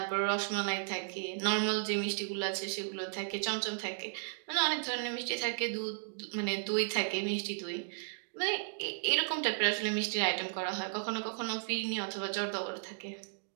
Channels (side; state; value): left; silent; digital silence